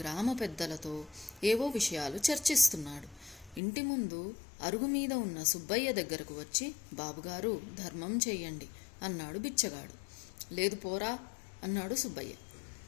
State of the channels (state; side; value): drops out; right; at 3.6 s